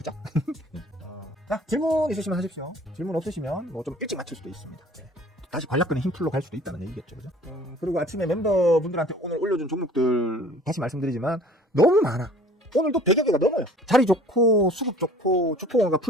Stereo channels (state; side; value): normal; both; correlation 0.49